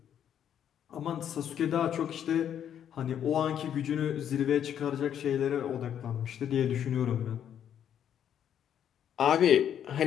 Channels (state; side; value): quieter; right; 9.5 dB